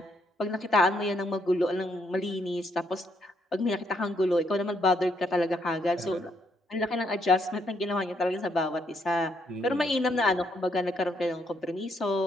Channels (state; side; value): normal; both; correlation 0.74